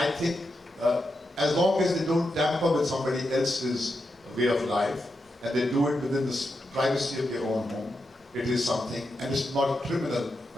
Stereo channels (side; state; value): both; normal; correlation 0.86